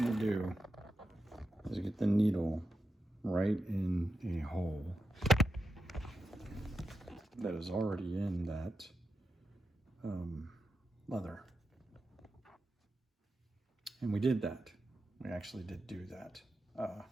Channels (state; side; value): normal; both; correlation 0.88